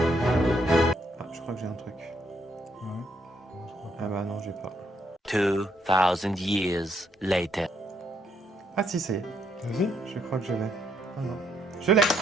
Ah, je crois que j'ai un truc. Ah bah non, j'ai pas. 2000 years later. Ah si, c'est. Vas-y. Je crois que je l'ai. Ah non. Je l'ai,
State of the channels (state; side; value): normal; both; correlation 0.74